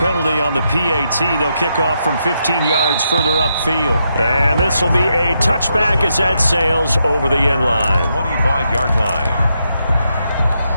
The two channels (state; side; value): inverted; both; correlation -0.81